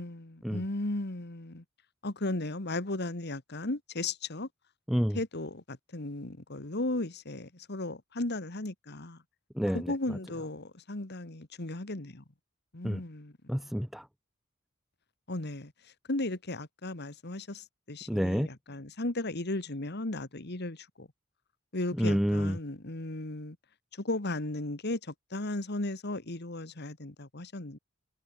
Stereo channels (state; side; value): normal; both; correlation 0.61